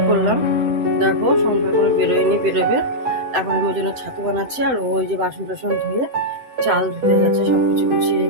করলাম। দেখো সংসার কোনো বেরোয়নি, বেরোবে। এখন আমার জন্য ছাতু বানাচ্ছি, আর ওই যে বাসন টাসন ধুয়ে চাল ধুতে যাচ্ছে, সব কিছু গুছিয়ে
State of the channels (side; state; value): left; late; 7.9 ms